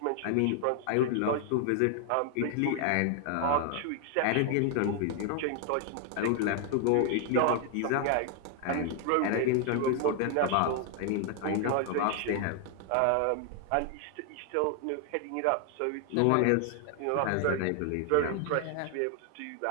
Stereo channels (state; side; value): different; both; correlation 0.00